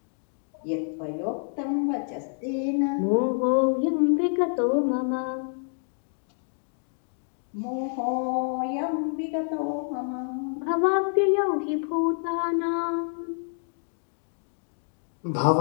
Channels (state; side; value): silent; right; digital silence